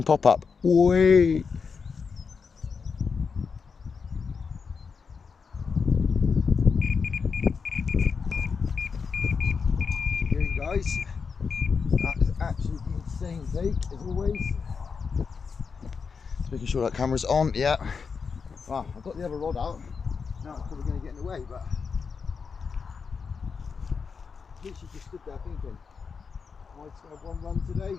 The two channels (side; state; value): right; quieter; 5.5 dB